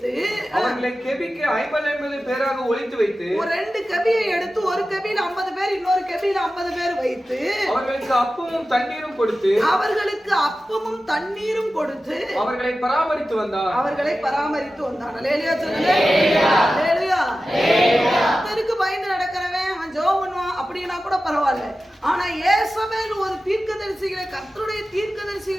அவர்களை கெபிக்கு 50 பேராக ஒளித்து வைத்து, ஒரு 2 கெபியை எடுத்து ஒரு கெபியில 50 பேர் இன்னொரு கெபியில 50 பேர் வைத்து அவர்களுக்கு அப்பமும் தண்ணீரும் கொடுத்து அவர்களை பராமரித்து வந்தான். அல்லேலூயா சொல்லுங்க. அல்லேலூயா. கர்த்தருக்கு பயந்து நடக்கிறவன் அவன் ஜெபம் பண்ணுவான் அப்படினா கூட பரவாயில்லை. ஆனா யேசபேல் ஒரு தீர்க்கதரிசிகளை கர்த்தருடைய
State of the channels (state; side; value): normal; both; correlation 0.94